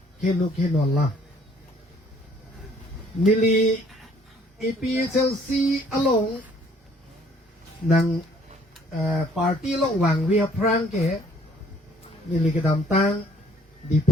keno la nili EPHLC along nang party long wang we prang ke nili kedam tang di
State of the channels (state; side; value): normal; both; correlation 0.60